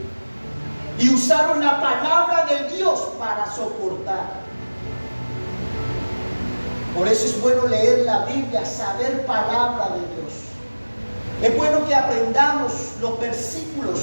y usaron la palabra de Dios para soportar. Por eso es bueno leer la Biblia, saber palabra de Dios. Es bueno que aprendamos los versículos,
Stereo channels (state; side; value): inverted; both; correlation -1.00